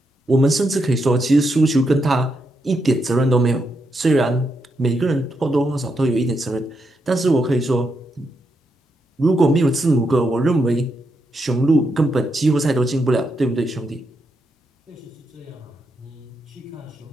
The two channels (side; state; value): both; normal; correlation 0.82